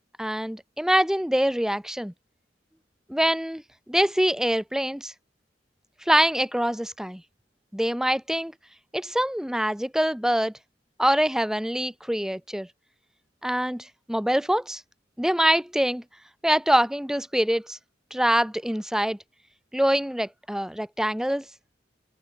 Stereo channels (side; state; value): both; normal; correlation 0.97